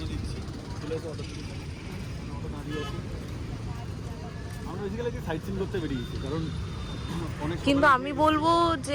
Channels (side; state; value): both; identical; correlation 1.00